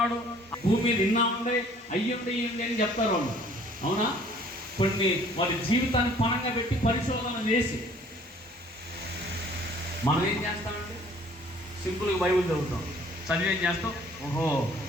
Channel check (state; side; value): normal; both; correlation 0.55